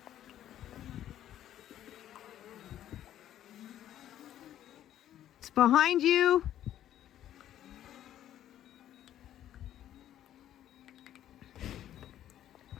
It's behind you.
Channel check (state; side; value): quieter; right; 11.7 dB